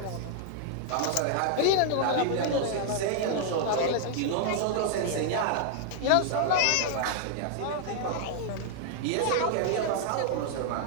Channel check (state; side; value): different; both; correlation 0.00